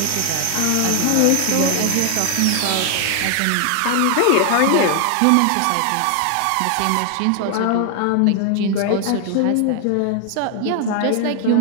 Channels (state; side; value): different; both; correlation 0.00